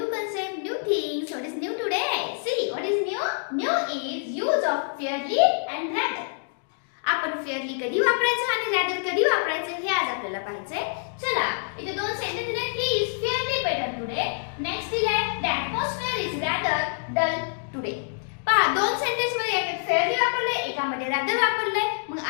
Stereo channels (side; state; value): right; silent; digital silence